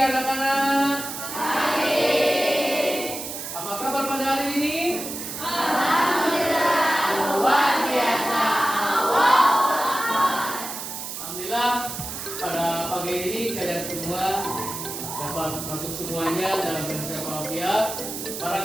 anak-anak. Apa kabar pada hari ini? Luar biasa. Alhamdulillah pada pagi ini kalian semua dapat masuk semuanya dalam bahasa Arabia.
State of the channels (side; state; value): right; noise; hiss, 7 dB below the sound